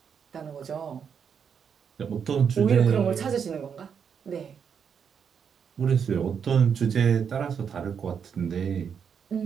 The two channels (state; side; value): quieter; left; 7.1 dB